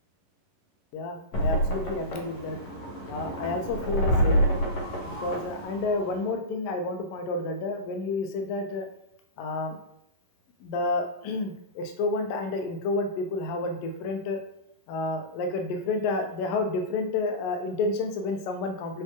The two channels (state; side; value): late; right; 11 ms